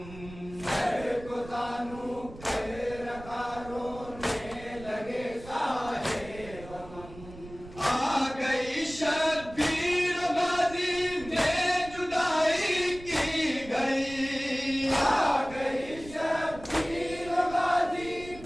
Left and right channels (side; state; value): right; noise; rumble, 16 dB below the sound